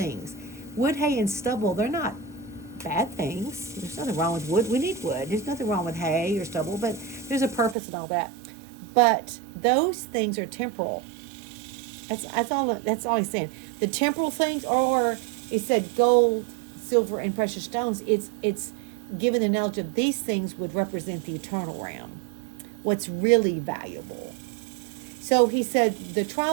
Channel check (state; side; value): drops out; left; at 7.8 s